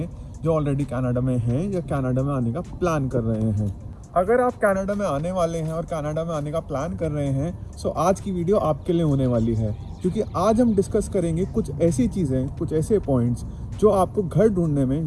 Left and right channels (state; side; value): identical; both; correlation 1.00